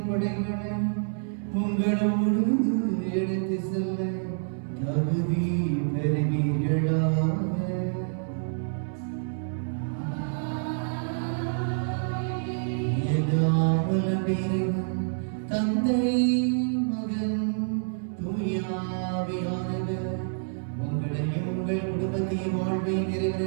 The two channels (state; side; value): silent; left; 60 dB below the other